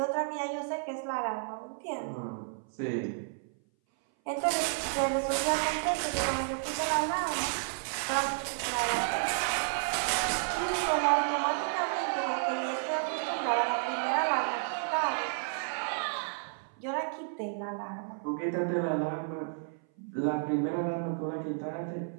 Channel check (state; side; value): silent; left; 57 dB below the other